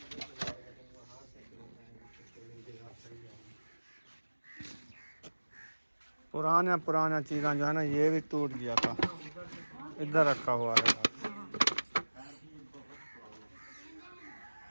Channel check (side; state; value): both; inverted; correlation -1.00